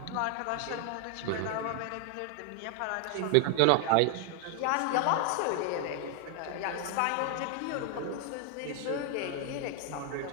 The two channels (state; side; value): different; both; correlation 0.00